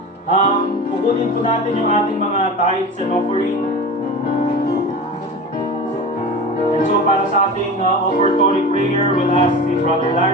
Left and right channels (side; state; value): both; normal; correlation 0.31